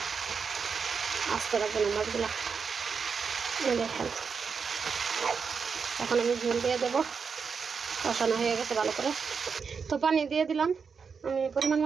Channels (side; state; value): left; quieter; 5.8 dB